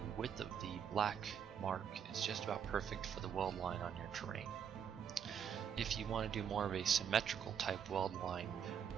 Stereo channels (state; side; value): quieter; left; 8.1 dB